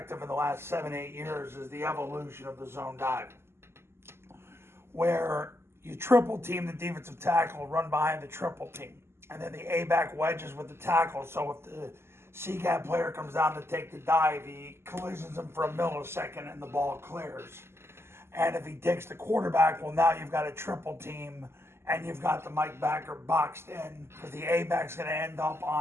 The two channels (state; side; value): late; left; 0.12 ms